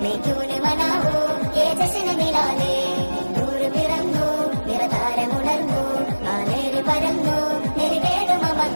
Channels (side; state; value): both; inverted; correlation -1.00